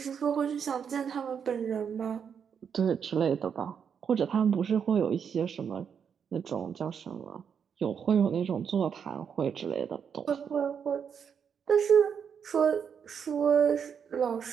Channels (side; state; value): left; quieter; 7.2 dB